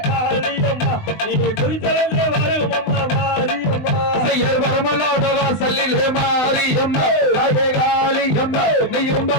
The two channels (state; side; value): late; right; 19 ms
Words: செய்யர் வரமலோட வாசலிலே மாரியம்மா பழகாலியம்மா நீயும்